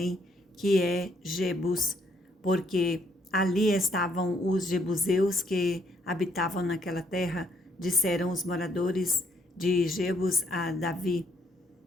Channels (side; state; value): both; normal; correlation 0.68